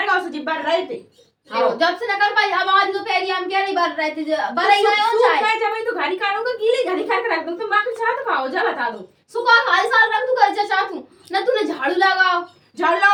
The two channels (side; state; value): both; identical; correlation 1.00